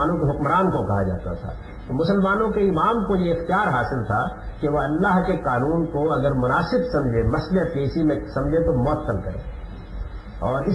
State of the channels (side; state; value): both; identical; correlation 1.00